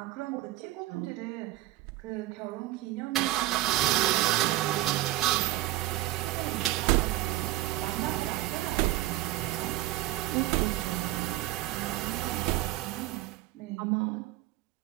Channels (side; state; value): left; quieter; 16.2 dB